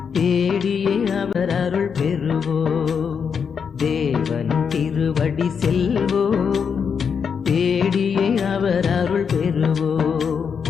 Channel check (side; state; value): right; quieter; 6.5 dB